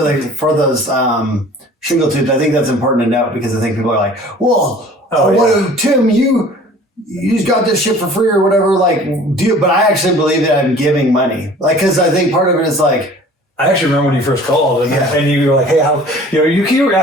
those shingle tubes. I think that's important to note because I think people are like, well, Tim, you just got this shit for free or whatever. Like, but I actually believe that I'm giving money. Like, because I think part of it is like, I actually remember when you first called and you were like, hey, you were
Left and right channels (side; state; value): both; normal; correlation 0.47